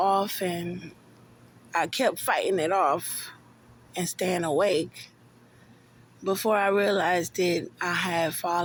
and I kept fighting it off and staying awake. Before I realized it, I had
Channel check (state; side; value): identical; both; correlation 1.00